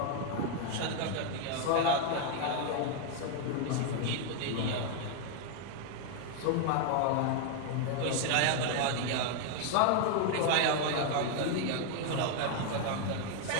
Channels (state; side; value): different; both; correlation 0.00